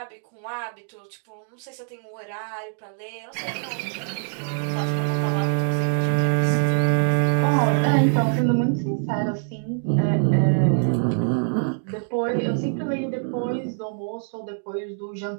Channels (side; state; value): left; silent; digital silence